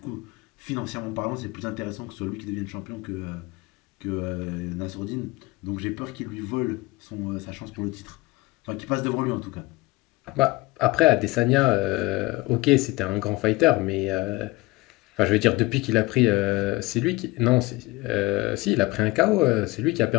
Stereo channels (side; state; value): right; quieter; 21.6 dB